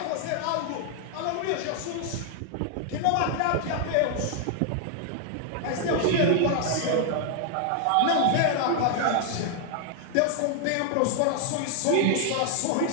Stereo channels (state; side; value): different; both; correlation 0.00